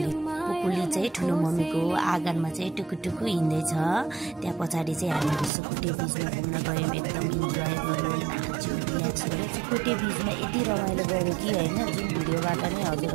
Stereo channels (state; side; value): drops out; left; at 5.5 s